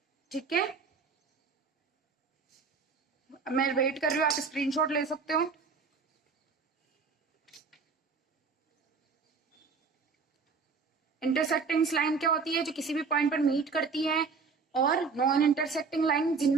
ठीक है, मैं वेट कर रही हूँ, आप स्क्रीनशॉट ले सकते हो। इंटरसेक्टिंग लाइन क्या होती है, जो किसी भी पॉइंट पर मीट करती है, और नॉन इंटरसेक्टिंग लाइन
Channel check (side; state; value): left; quieter; 5.0 dB